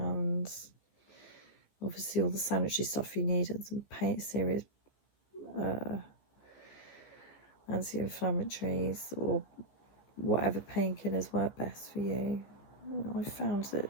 obviously all the sanitary stuff you need, and some serious anti-inflammatories or whatever painkillers work best for you. I found that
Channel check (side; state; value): right; late; 14 ms